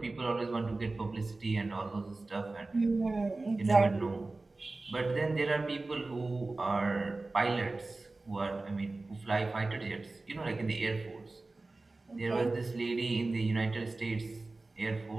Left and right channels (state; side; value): quieter; left; 3.3 dB